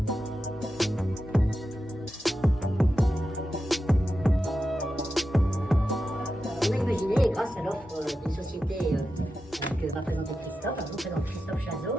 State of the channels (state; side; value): normal; both; correlation 0.90